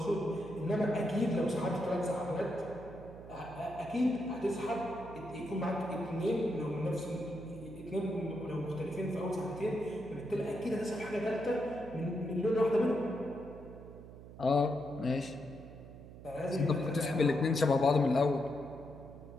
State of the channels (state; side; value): noise; right; hum, 15 dB below the sound